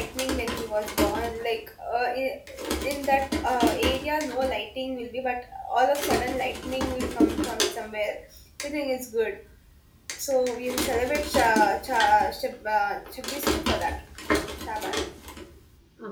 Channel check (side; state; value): both; identical; correlation 1.00